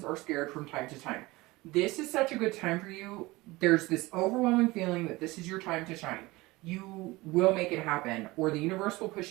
are scared from time to time. This is such a good time for you. There's this overwhelming feeling that this is your time to shine. You will make it happen, or the universe will push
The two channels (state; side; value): quieter; left; 21.1 dB